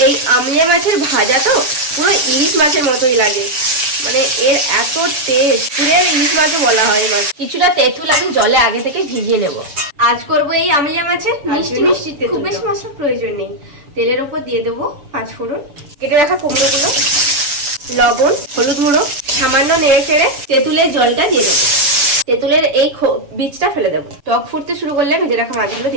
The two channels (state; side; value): late; left; 6.9 ms